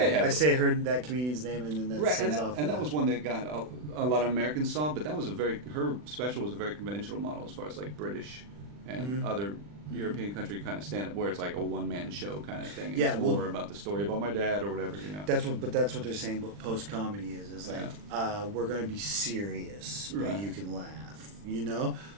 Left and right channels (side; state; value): left; late; 40 ms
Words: Yeah, I say her that comedian's name, and then that Right, sends and off. that was one that got a lot of Americans saw, but that was her special was a very conventional model as far as like British and other European country kind of stand up, where it's like a one man show kind of thing. And Yeah, it's well, more about the story about my dad or whatever, you know. That's what they're saying. What post comedy is like we're gonna be serious, but Right. you can laugh. You know,